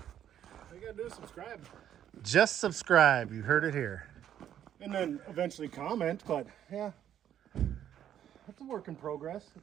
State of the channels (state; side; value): quieter; left; 10.4 dB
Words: All you gotta do is subscribe. Just subscribe. You heard it here. And then eventually comment, but yeah. It's a work in progress.